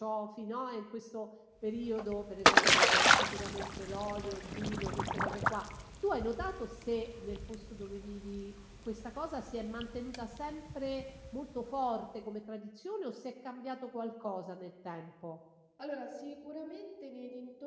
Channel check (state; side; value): identical; both; correlation 1.00